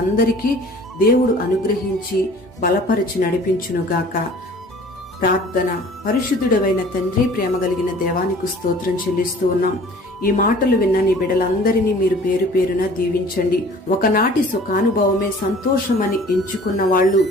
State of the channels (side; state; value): both; normal; correlation 0.48